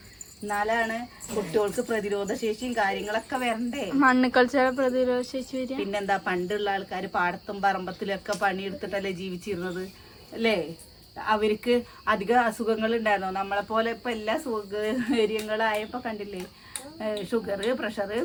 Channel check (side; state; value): both; identical; correlation 1.00